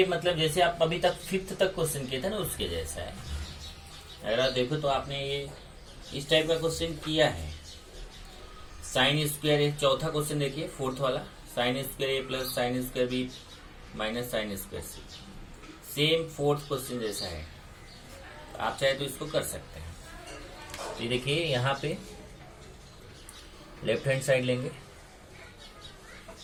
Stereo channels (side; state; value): both; identical; correlation 1.00